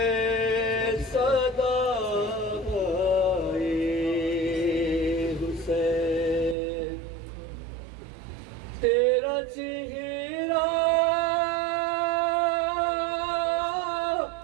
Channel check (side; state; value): left; drops out; at 6.6 s